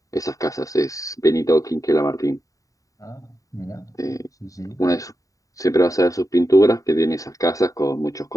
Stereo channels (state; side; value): late; right; 0.16 ms